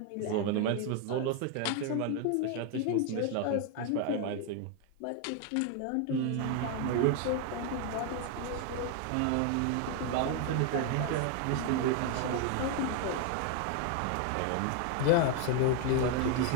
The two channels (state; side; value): different; both; correlation 0.01